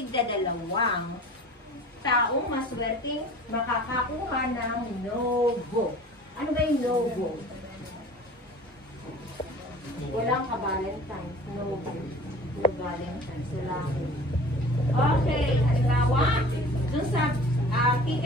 taong maswerteng makakakuha ng no-go. Ano ba yung no-go? Walang ka-Valentine's. No-go. No-Valentine's. Wala. Okay, halimbawa, dun sa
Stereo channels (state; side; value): normal; both; correlation 0.44